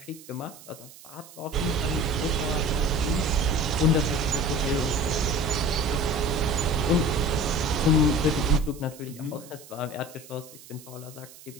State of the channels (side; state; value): right; noise; hiss, 20 dB below the sound